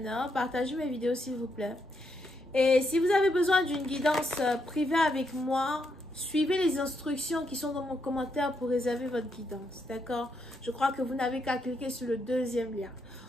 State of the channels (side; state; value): both; normal; correlation 0.79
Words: partagez mes vidéos s'il vous plaît. Et si vous avez besoin d'une guidance privée avec moi, suivez les instructions qui sont dans mon commentaire pour réserver votre guidance, d'accord? Je crois que vous n'avez qu'à cliquer sur le deuxième lien.